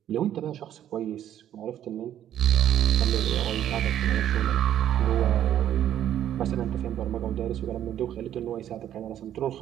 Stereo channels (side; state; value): left; quieter; 11.0 dB